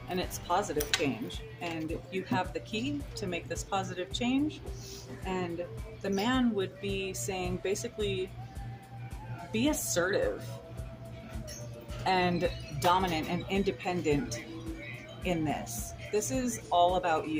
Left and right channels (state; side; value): identical; both; correlation 1.00